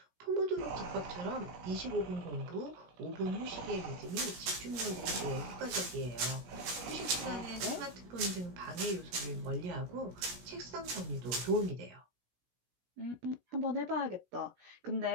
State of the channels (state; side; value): late; left; 17 ms